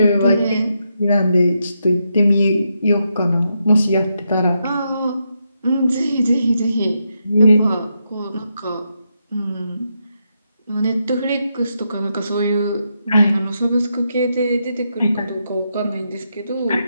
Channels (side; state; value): both; inverted; correlation -0.82